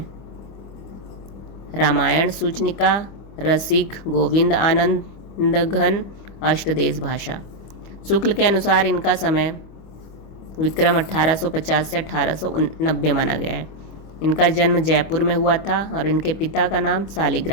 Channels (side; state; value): right; late; 25 ms